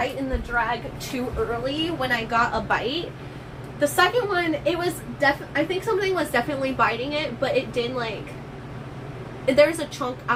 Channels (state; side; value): identical; both; correlation 1.00